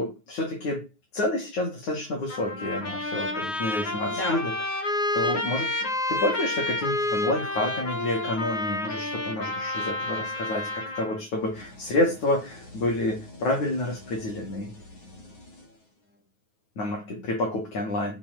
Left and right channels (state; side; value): late; right; 9.5 ms